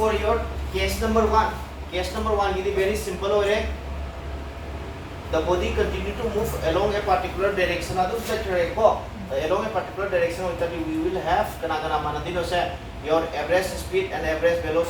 your case number 1. Case number 1 is very simple ore. The body continue to move along a particular direction. Adu set ko along a particular direction we will have kana manadino se your average speed and average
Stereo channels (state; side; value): identical; both; correlation 1.00